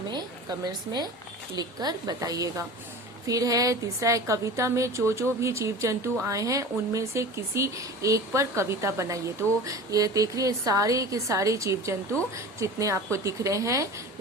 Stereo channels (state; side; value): normal; both; correlation 0.35